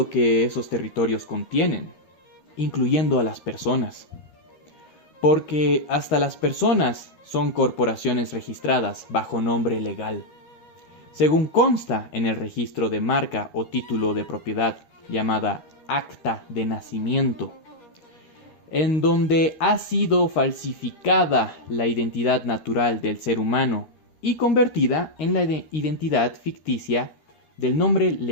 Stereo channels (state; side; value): late; right; 13 ms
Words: que esos territorios contienen, incluyendo a las personas. Porque hasta las personas son corporaciones registradas bajo nombre legal, según consta en el registro de marca o título de propiedad llamada Acta de Nacimiento, en donde ha sido falsificada la identidad natural del ser humano y convertida en la identidad ficticia del nombre